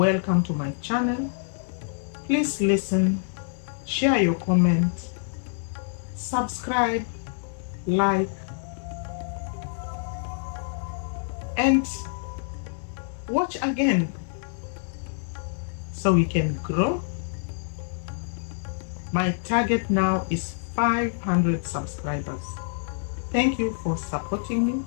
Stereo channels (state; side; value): silent; right; 60 dB below the other